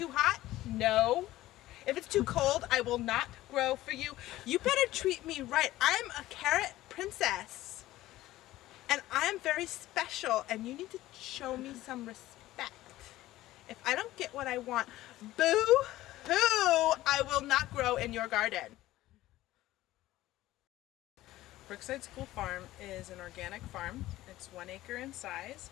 hot, no. If it's too cold, I will not grow for you. You better treat me right. I'm a carrot princess, and I'm very special, and you need to show me some respect. If I don't get what I want, boo-hoo, I will not grow in your garden. Brookside School Farm is an organic farm. It's 1 acre in size,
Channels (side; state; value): right; quieter; 15.9 dB